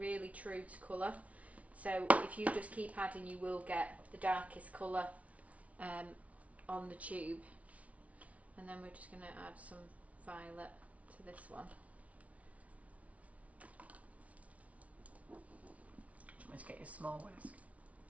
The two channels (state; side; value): late; left; 0.066 ms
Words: true to colour. So if you just keep adding, you will get the darkest colour on the tube. And then we're just going to add some violet to this one. Let's get your small whisk.